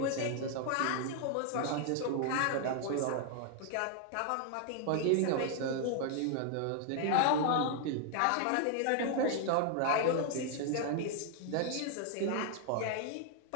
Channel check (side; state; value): both; different; correlation 0.00